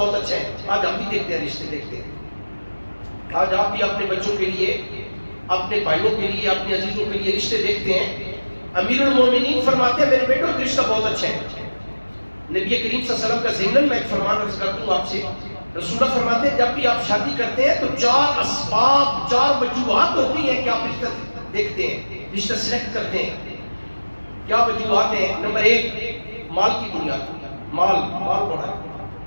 اچھا ہے، آج ہم بھی دیکھتے ہیں، رشتے دیکھتے ہیں. آج آپ بھی اپنے بچوں کے لیے، اپنے بھائیوں کے لیے، اپنے عزیزوں کے لیے رشتے دیکھتے ہیں. امیر المومنین فرماتے ہیں میرے بیٹو ایک رشتہ بہت اچھا ہے. نبی کریم صلی اللہ علیہ وسلم کا ضمن میں ایک فرمان عرض کرتا ہوں آپ سے. رسول اللہ فرماتے ہیں جب بھی آپ شادی کرتے ہیں تو 4 اسباب، 4 وجوہات ہوتی ہیں کہ آپ رشتہ دیکھتے ہیں، رشتہ سلیکٹ کرتے ہیں. کیا وجوہات ہیں؟ نمبر 1 مال کی بنیاد، مال بڑا ہے.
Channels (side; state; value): both; inverted; correlation -1.00